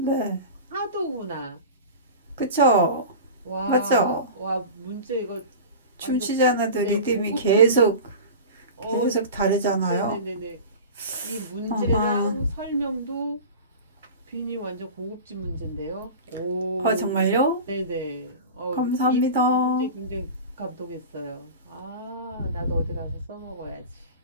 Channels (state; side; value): inverted; both; correlation -0.33